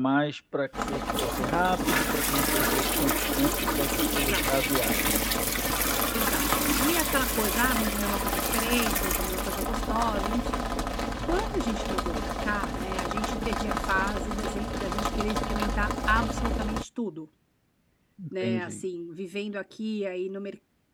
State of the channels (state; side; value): identical; both; correlation 1.00